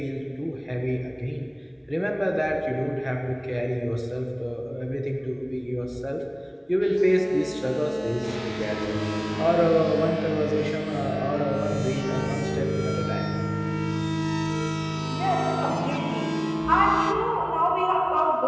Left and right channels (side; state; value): both; identical; correlation 1.00